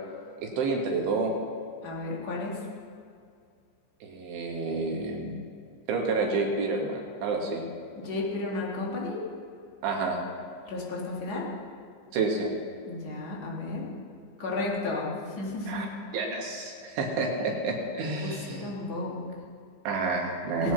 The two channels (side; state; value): left; late; 15 ms